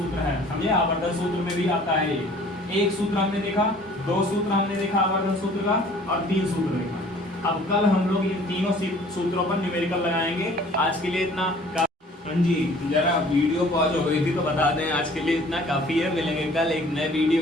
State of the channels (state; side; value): normal; both; correlation 0.52